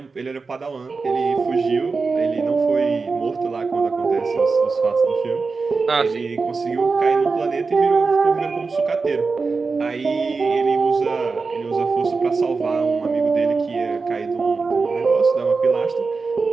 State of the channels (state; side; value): quieter; left; 4.4 dB